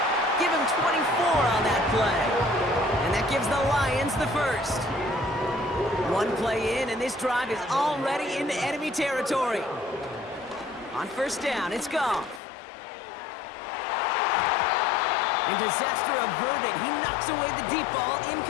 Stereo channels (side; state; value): right; drops out; at 12.4 s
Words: Give him 24 on that play. And that gives the Lions the first. One play in, and this drive is already into enemy territory. On first down, it's Goff. And disaster averted. He knocks away the deep ball,